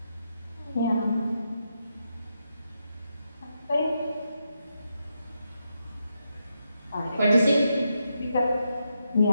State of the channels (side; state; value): both; inverted; correlation -0.83